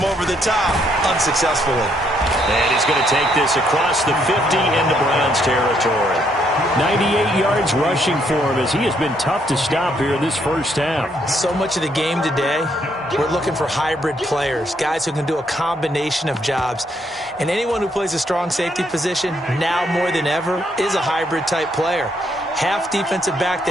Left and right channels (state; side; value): normal; both; correlation 0.72